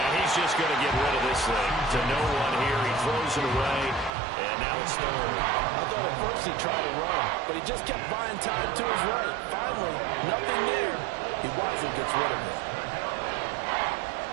he's just going to get rid of this thing. To no one here. He throws it away. And now it's third. I thought at first he tried to run, but he just kept buying time to his right. Finally, nothing there. He wisely gets rid of it.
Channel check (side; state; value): left; drops out; at 4.2 s